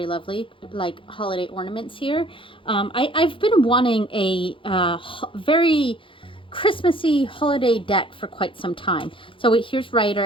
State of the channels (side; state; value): right; late; 0.25 ms